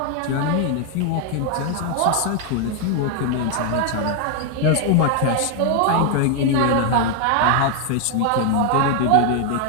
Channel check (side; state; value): both; different; correlation 0.00